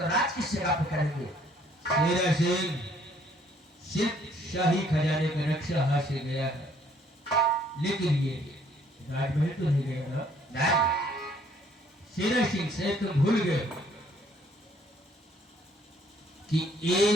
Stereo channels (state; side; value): normal; both; correlation 0.63